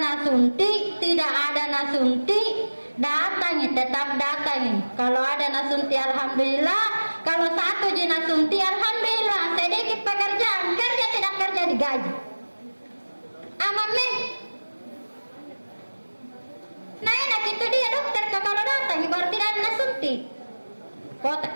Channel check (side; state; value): both; inverted; correlation -1.00